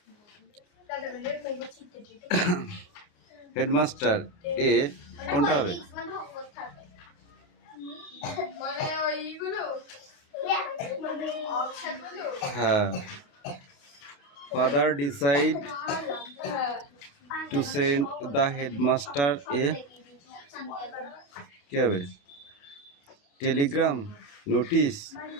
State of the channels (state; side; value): late; right; 28 ms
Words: headmaster a কোনটা হবে? হ্যাঁ, father decide to send the headmaster a কি হবে? টেলিগ্রাম, নোটিশ,